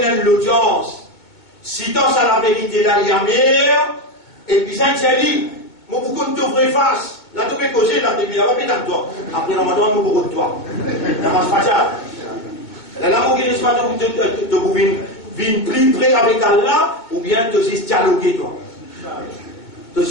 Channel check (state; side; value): late; right; 2.2 ms